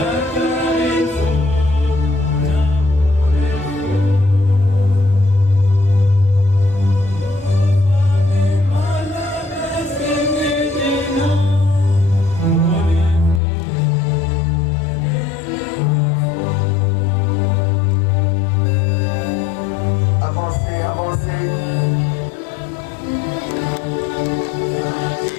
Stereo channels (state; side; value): drops out; right; at 13.4 s